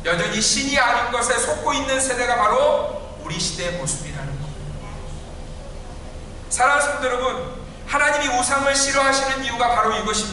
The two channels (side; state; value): both; identical; correlation 1.00